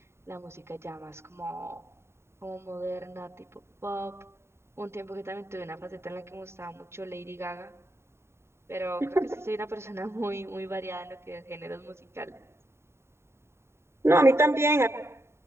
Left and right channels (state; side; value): late; left; 0.13 ms